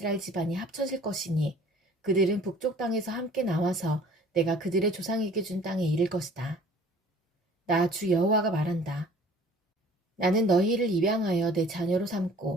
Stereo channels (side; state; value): both; normal; correlation 0.51